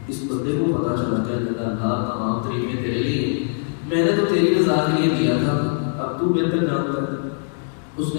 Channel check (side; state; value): right; silent; digital silence